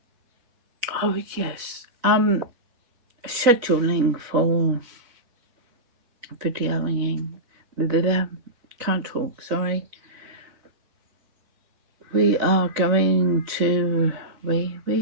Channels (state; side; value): late; left; 4.1 ms